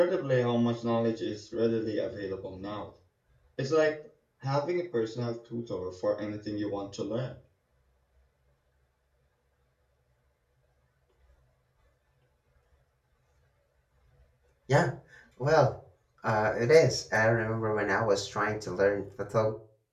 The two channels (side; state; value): both; identical; correlation 1.00